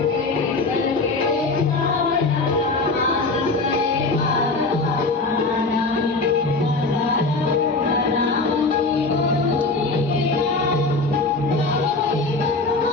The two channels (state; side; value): quieter; right; 3.4 dB